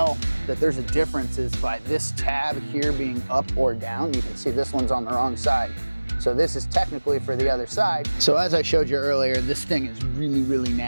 that there's a difference is by this tab here being up or down. You can see this one's on the wrong side. So this is technically for the other side. So as I showed you earlier, this thing is really, really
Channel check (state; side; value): inverted; both; correlation -1.00